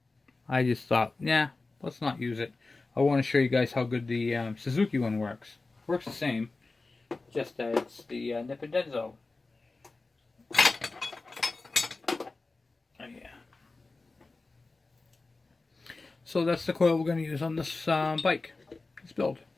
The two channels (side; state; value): right; quieter; 3.5 dB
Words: I just thought, yeah, let's not use it. I want to show you guys how good the Suzuki one works. Works the same, just that it's the Nippon-Denso. Oh, yeah. So that's the coil we're going to use on this bike, this build.